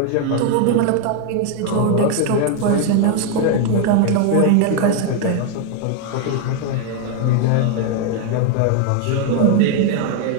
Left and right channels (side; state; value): both; different; correlation 0.01